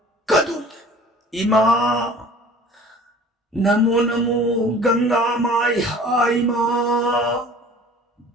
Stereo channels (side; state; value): both; normal; correlation 0.46